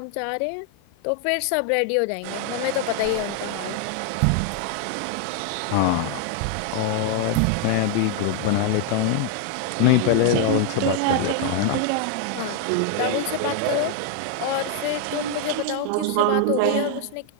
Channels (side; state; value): both; different; correlation 0.00